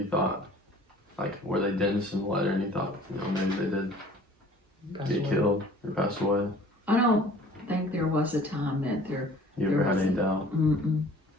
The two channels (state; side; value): normal; both; correlation 0.49